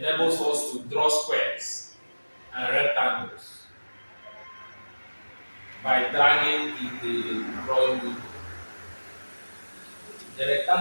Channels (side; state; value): both; inverted; correlation -1.00